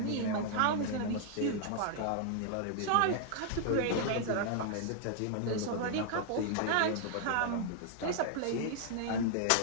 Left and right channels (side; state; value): both; different; correlation -0.01